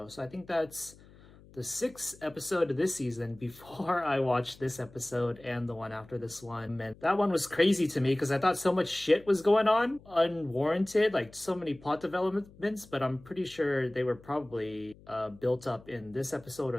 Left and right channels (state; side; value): noise; left; hum, 23 dB below the sound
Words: so I think that's the 6th episode of this season before I watched this episode and the one after this one. And that one was crazy to me because I thought so much shit was going on, unwarranted, like so many plot developments, but I'm pretty sure they were probably built up in this episode